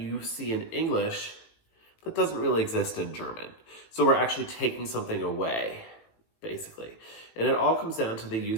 see in English that doesn't really exist in German. So we're actually taking something away, basically. And it all comes down to the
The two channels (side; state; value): right; late; 18 ms